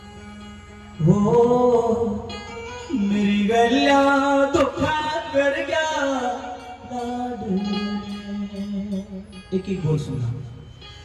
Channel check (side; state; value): both; identical; correlation 1.00